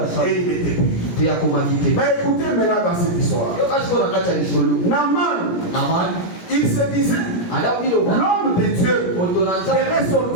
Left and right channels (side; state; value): right; late; 17 ms